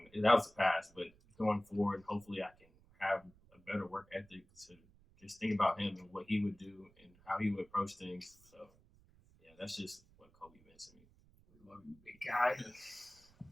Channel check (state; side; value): noise; right; rumble, 28 dB below the sound